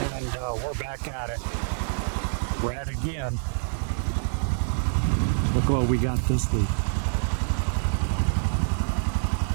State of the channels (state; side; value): silent; left; 61 dB below the other